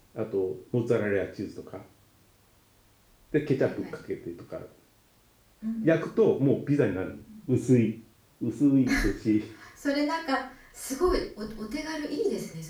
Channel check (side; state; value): both; identical; correlation 1.00